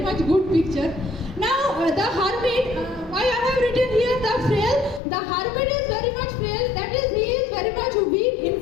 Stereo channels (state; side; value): drops out; right; at 5.0 s